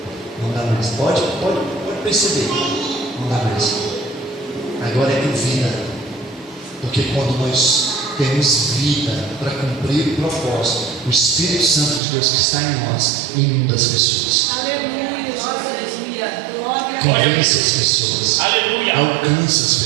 Não dá mais. Pode perceber, não dá mais. Agora é com vida, porque quando nós temos vida para cumprir o propósito, o Espírito Santo de Deus que está em nós inunda as pessoas. Aleluia! Convence as pessoas. Aleluia. Alcança as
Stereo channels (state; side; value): drops out; left; at 12.0 s